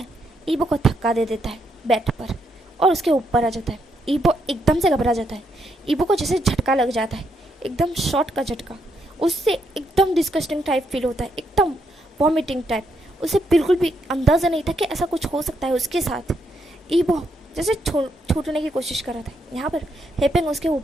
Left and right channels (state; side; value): normal; both; correlation 0.77